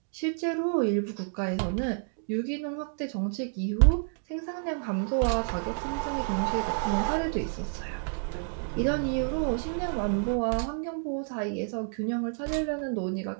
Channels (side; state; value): left; silent; 58 dB below the other